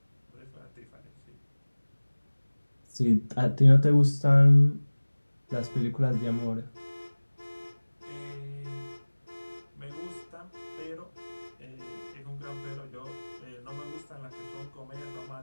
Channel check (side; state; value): both; inverted; correlation -1.00